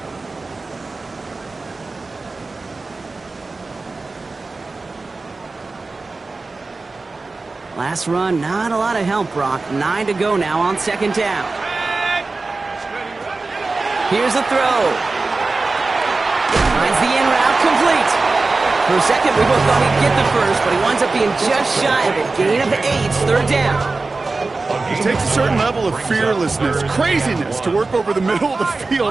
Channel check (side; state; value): left; quieter; 3.7 dB